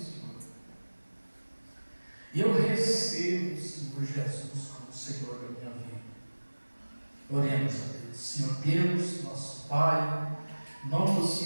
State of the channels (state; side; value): inverted; both; correlation -1.00